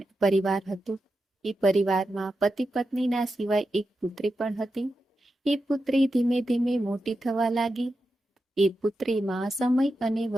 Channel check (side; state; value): both; normal; correlation 0.89